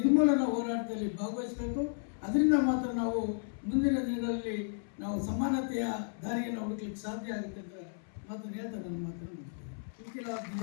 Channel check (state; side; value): silent; right; 55 dB below the other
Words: ಹೋರಾಟದಲ್ಲಿ ಭಾಗವಹಿಸಬೇಕು. ಅದರಿಂದ ಮಾತ್ರ ನಾವು ಮುಂದಿನ ದಿನಗಳಲ್ಲಿ ನಾವು ಸಮಾನತೆಯ ದಾರಿಯನ್ನು ಹುಡುಕಲಿಕ್ಕೆ ಸಾಧ್ಯ ಆಗುತ್ತೆ ಅಂತ ಮಾತನ್ನು ಹೇಳ್ತಾ ನನ್ನ ಮಾತನ್ನು